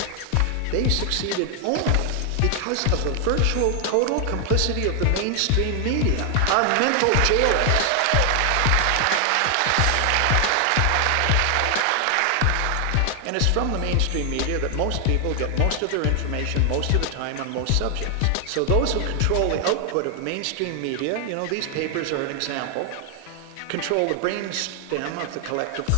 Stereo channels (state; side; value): different; both; correlation 0.00